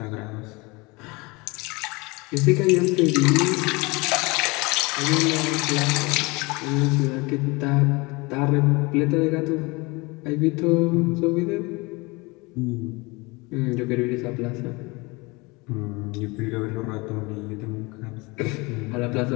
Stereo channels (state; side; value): quieter; right; 25.5 dB